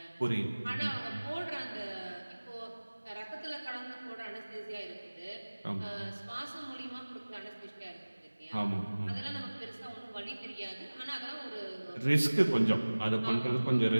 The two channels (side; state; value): both; inverted; correlation -1.00